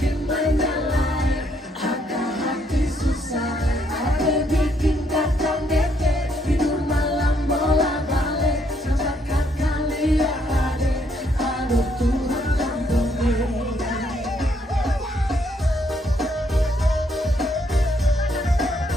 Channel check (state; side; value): normal; both; correlation 0.71